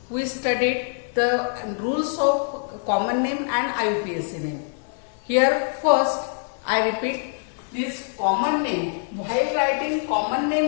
we studied the rules of common name and IUPAC name. Here first I repeat this common name. While writing common name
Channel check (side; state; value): right; silent; 60 dB below the other